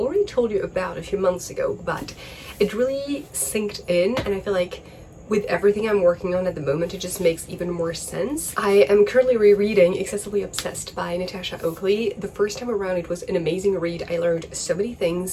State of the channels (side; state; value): both; identical; correlation 1.00